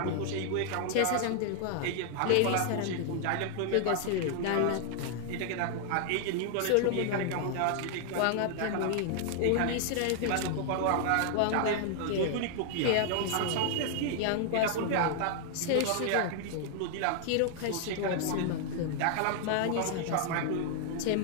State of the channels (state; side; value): different; both; correlation 0.00